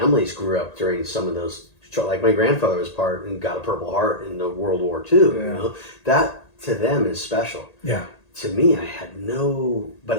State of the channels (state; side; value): late; right; 1.8 ms